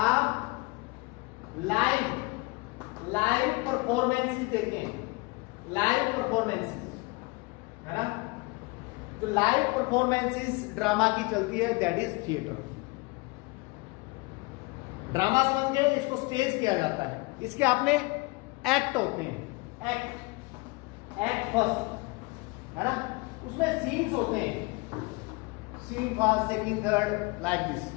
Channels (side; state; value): right; quieter; 26.0 dB